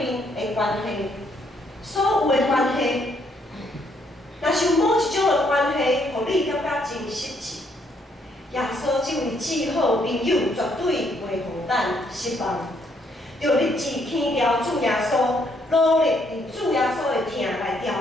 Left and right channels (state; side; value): normal; both; correlation 0.71